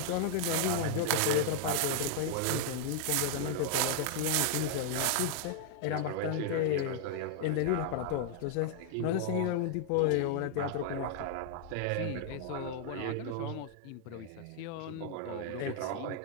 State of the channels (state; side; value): different; both; correlation 0.00